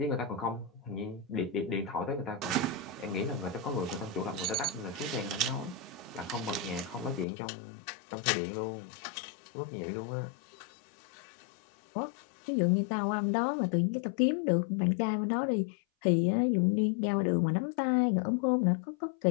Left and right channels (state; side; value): drops out; right; at 7.2 s